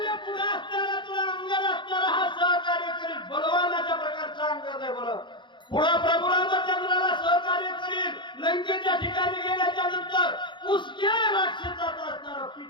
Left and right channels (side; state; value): right; late; 0.23 ms